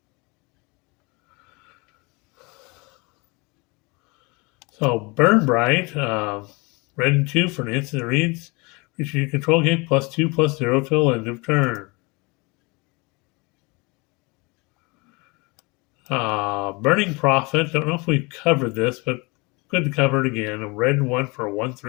So Burn Bright, red and 2 for an instant reads. Creature you control get +2/+0 till end of turn. Burning Prophet. Don't know if we covered this, but good to cover it again. A red and 1 for a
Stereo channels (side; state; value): right; quieter; 27.4 dB